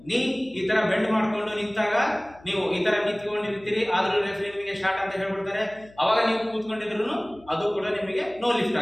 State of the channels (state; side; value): noise; left; hum, 25 dB below the sound